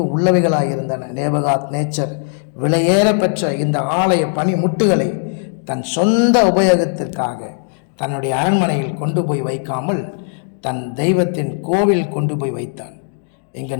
உள்ளவைகளாயிருந்தன. நேபுகாத் நேச்சர் விலையேற பெற்ற இந்த ஆலய பனி முட்டுகளை தன் சொந்த உபயோகத்திற்காக தன்னுடைய அரண்மனையில் கொண்டு போய் வைக்காமல் தன் தெய்வத்தின் கோவில் கொண்டு போய் வைத்தான். இங்கு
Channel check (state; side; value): silent; right; digital silence